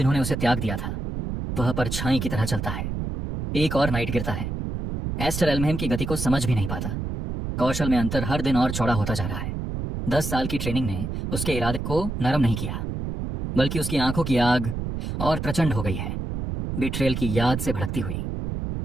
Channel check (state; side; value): noise; right; rumble, 4 dB below the sound